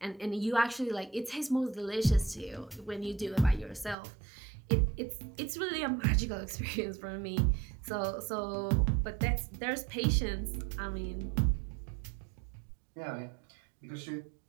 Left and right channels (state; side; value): drops out; left; at 4.0 s